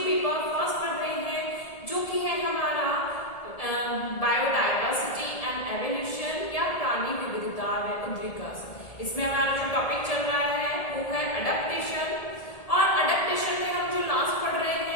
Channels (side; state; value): right; late; 1.7 ms